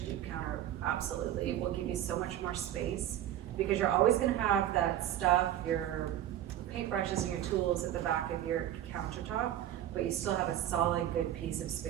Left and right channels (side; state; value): left; quieter; 11.8 dB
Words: deep counter absolutely will give you so much more space, because you're always gonna have that stuff, your paintbrushes and your tools at the back of your countertop, but you still have a solid, good piece of